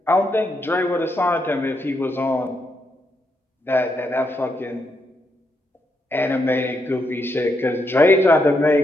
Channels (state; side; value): normal; both; correlation 0.80